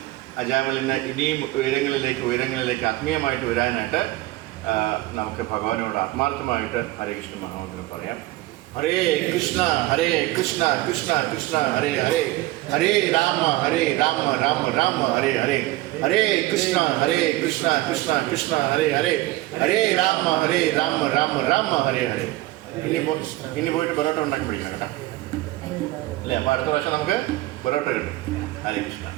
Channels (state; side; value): quieter; left; 17.9 dB